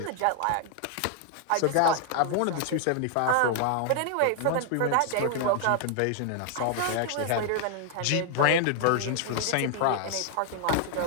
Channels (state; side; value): different; both; correlation 0.00